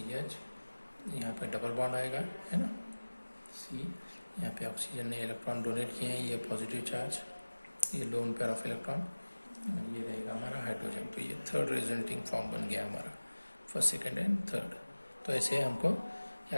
यहाँ पे डबल बॉन्ड आएगा है ना C, यहाँ पे ऑक्सीजन ने इलेक्ट्रॉन डोनेट किए हैं, ये पॉजिटिव चार्ज, ये लोन पेयर ऑफ इलेक्ट्रॉन, और ये रहेगा हमारा हाइड्रोजन। तो ये थर्ड रेजोनेटिंग फॉर्म बन गया हमारा, फर्स्ट सेकंड एंड थर्ड। तो ऐसे हमको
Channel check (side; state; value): both; inverted; correlation -1.00